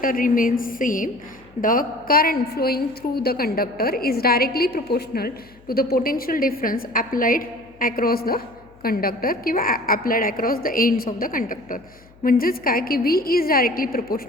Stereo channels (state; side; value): noise; left; hum, 27 dB below the sound